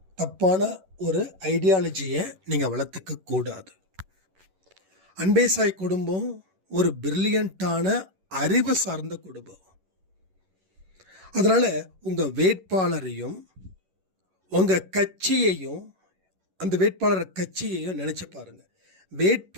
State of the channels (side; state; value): left; late; 11 ms